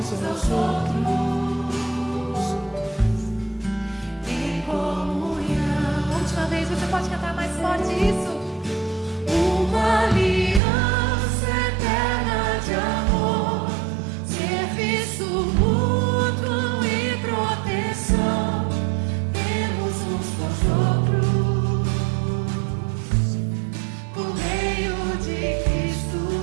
aos outros, em comunhão. Última vez, você pode cantar mais forte isso? Uma aliança eterna de amor, serviço mútuo e proteção, temos uns com os outros, por meio de Cristo,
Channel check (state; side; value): drops out; left; at 10.6 s